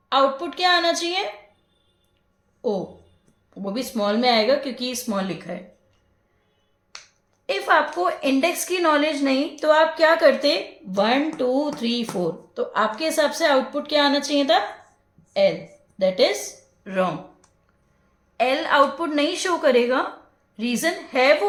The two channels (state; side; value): identical; both; correlation 1.00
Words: आउटपुट क्या आना चाहिए, ओ, वो भी स्मॉल में आएगा क्योंकि स्मॉल लिखा है। इफ आपको इंडेक्स की नॉलेज नहीं तो आप क्या करते, 1 2 3 4, तो आपके हिसाब से आउटपुट क्या आना चाहिए था, L. That is wrong, L output नहीं शो करेगा। रीजन है